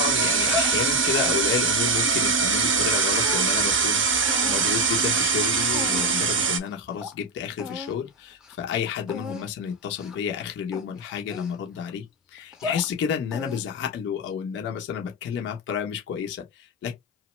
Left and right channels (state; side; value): normal; both; correlation 0.07